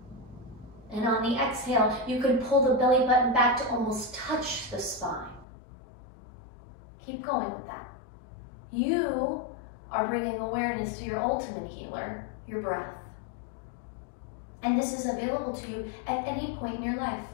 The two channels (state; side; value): drops out; right; at 5.5 s